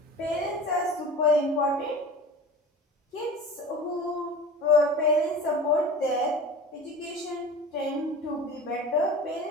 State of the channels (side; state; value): both; normal; correlation 0.36